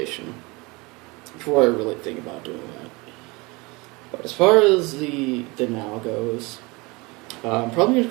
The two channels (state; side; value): quieter; left; 25.4 dB